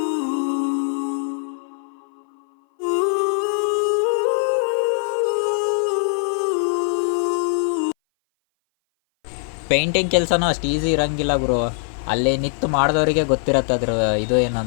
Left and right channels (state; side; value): silent; right; 59 dB below the other